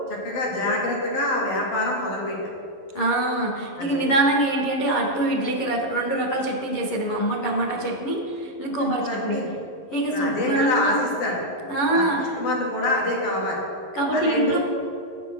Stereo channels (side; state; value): right; late; 11 ms